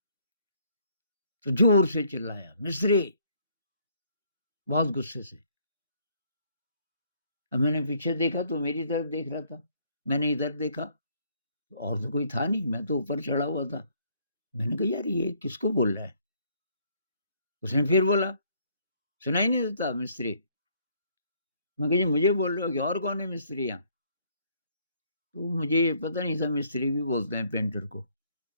तो ज़ोर से चिल्लाया, "मिस्त्री!" बहुत गुस्से से। अब मैंने पीछे देखा तो मेरी तरफ देख रहा था। मैंने इधर देखा, और तो कोई था नहीं, मैं तो ऊपर चढ़ा हुआ था। मैंने कहा, "यार ये किसको बोल रहा है?" उसने फिर बोला, "सुनाई नहीं देता मिस्त्री?" मैं कहा, "जी मुझे बोल रहे हो कि और कौन है मिस्त्री यहाँ?" तो मुझे पता नहीं था मिस्त्री भी बोलते हैं पेंटर को।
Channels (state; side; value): inverted; both; correlation -0.65